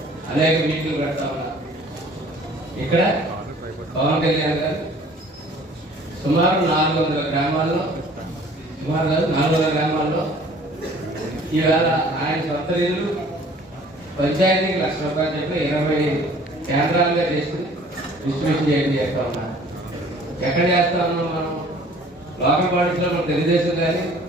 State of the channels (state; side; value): normal; both; correlation 0.52